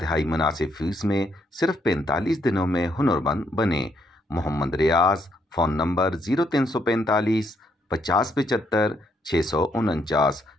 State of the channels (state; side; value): normal; both; correlation 0.74